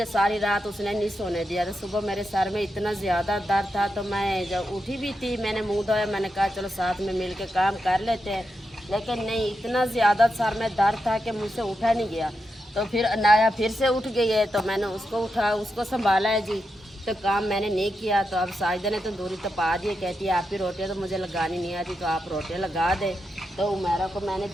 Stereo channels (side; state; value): both; normal; correlation 0.86